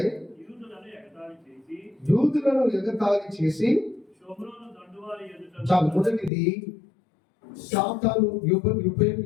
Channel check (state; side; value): drops out; right; at 6.3 s